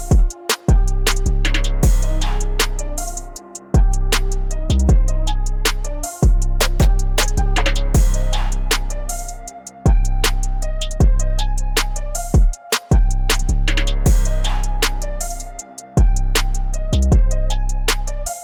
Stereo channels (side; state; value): both; identical; correlation 1.00